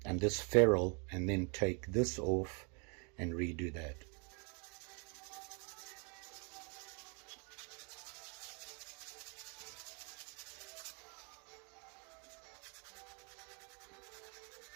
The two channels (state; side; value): quieter; left; 35.2 dB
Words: and this ferrule, and then take this off and redo that.